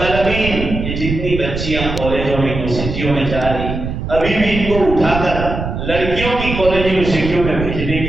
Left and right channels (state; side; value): noise; right; rumble, 5 dB below the sound